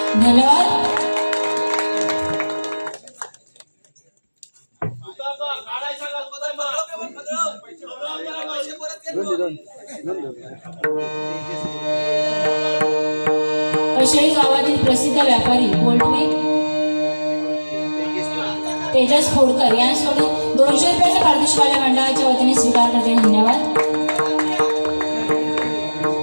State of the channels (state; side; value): inverted; both; correlation -1.00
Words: धन्यवाद. कशाळी गावातील प्रसिद्ध व्यापारी पोल्ट्री तेजस खोडकर यांच्याकडून 200 रुपयाचा पारितोषिक मंडळाच्या वतीने स्वीकार करते. धन्यवाद.